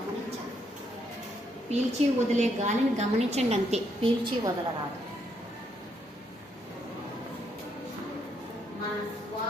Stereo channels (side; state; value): both; normal; correlation 0.75